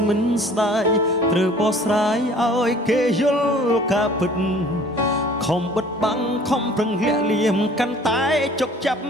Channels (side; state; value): both; normal; correlation 0.50